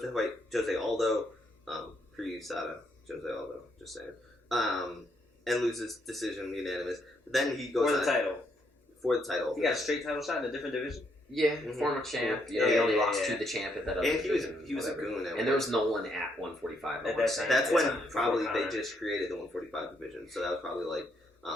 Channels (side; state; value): both; normal; correlation 0.74